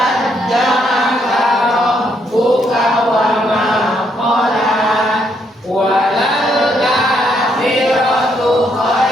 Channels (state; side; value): normal; both; correlation 0.74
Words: rabbuka wa ma qala. Walal akhiratu